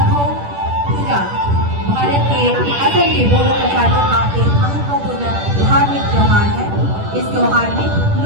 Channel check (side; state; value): left; late; 10 ms